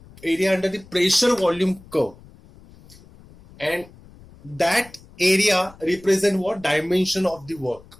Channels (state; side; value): noise; left; rumble, 23 dB below the sound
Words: the pressure volume curve, and that area represent what dimension of the work.